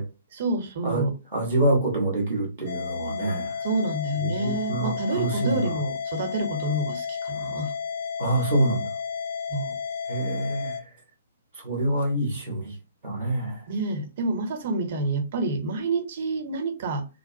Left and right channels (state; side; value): inverted; both; correlation -0.57